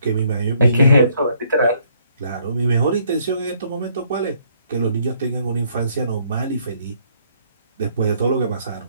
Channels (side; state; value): both; inverted; correlation -0.67